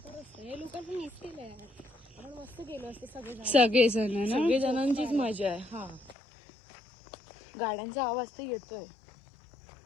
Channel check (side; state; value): right; drops out; at 6.2 s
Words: हे लोकांचं मिस केलंय. आपण मस्त गेलो असतो सगळेजण. सगळेजण ना सगळे जणांचीच मजा आहे. हा, गाड्यांचा आवाज तर येतोय.